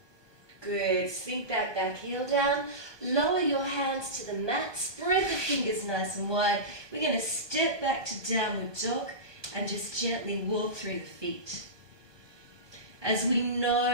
Good. Sink that back heel down. Lower your hands to the mat. Spread the fingers nice and wide. We're going to step back to downward dog and just gently walk through the feet. As we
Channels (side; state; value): left; late; 1.2 ms